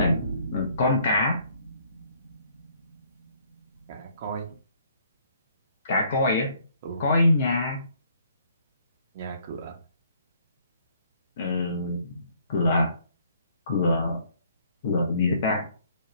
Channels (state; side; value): inverted; both; correlation -0.63